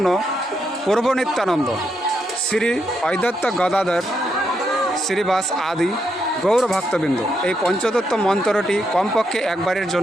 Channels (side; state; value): both; normal; correlation 0.80